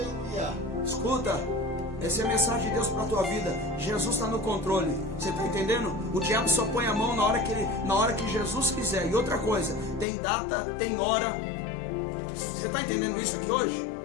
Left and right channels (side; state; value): right; drops out; at 10.1 s